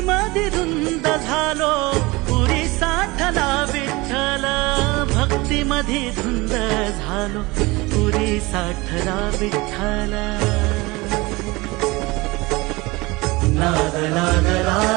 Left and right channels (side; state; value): left; quieter; 22.8 dB